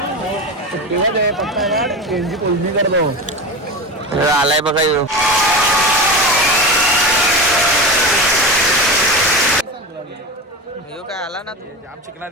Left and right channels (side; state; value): both; normal; correlation 0.25